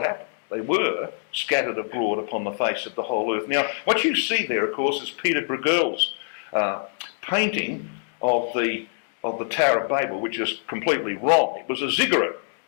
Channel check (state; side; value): silent; right; digital silence